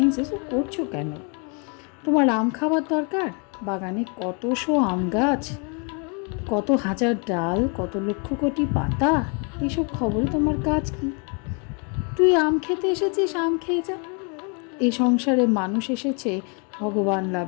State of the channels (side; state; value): right; quieter; 36.3 dB